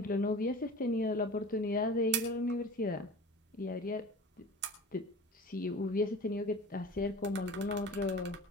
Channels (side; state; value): both; normal; correlation 0.38